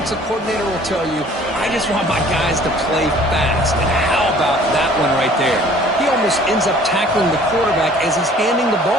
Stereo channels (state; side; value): normal; both; correlation 0.53